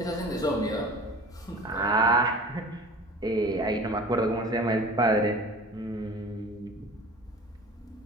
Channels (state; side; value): normal; both; correlation 0.40